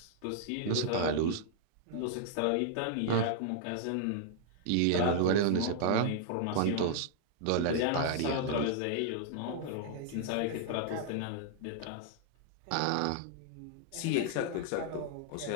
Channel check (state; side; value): different; both; correlation -0.01